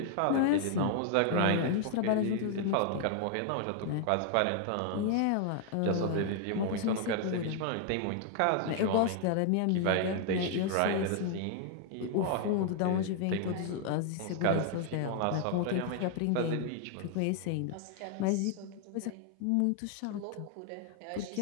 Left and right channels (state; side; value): different; both; correlation 0.00